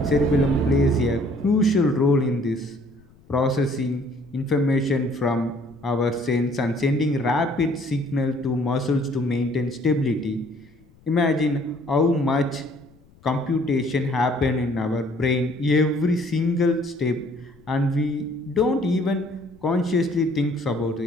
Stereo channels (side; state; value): left; noise; rumble, 28 dB below the sound